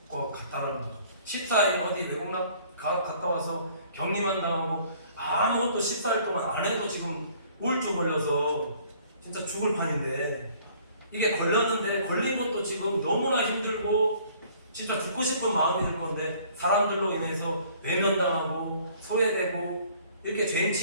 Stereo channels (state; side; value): inverted; both; correlation -0.57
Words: 것 같다라는 거죠. 14일 어디 외국 갔다 와서 격리만 당하고 아무것도 14일 동안 안 해도 지금 우울증 걸려서 진짜 죽을 판인데 이게 걸렸는데 걸린 것도 지금 너무나 힘들고 진짜 죽고 싶은 마음이 들 건데 사람들로 인해서 외면당하고 소외되고 이렇게 죄인